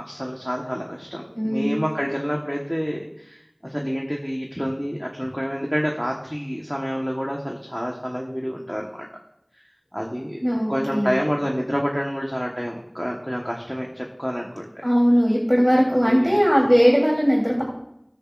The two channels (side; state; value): both; identical; correlation 1.00